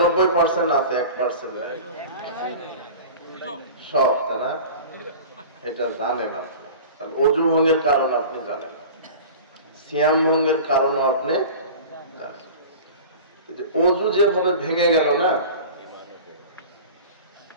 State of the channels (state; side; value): inverted; both; correlation -0.37